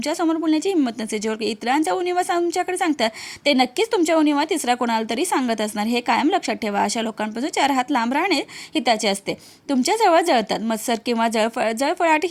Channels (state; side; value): identical; both; correlation 1.00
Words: बोलण्याची हिंमत नसते. जे इतरांचा उणीवा तुमच्याकडे सांगतात ते नक्कीच तुमच्या उणीवा तिसरा कोणाला तरी सांगत असणार. हे कायम लक्षात ठेवा. अशा लोकांपासून 4 हात लांब राहणे हिताचे असते. तुमच्या जवळ जळतात. मत्सर किंवा जळफळाट